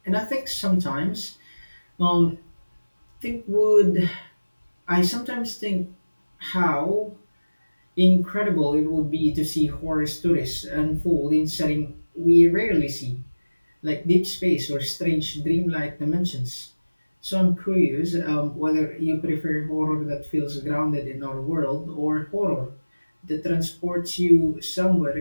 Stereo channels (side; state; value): both; inverted; correlation -1.00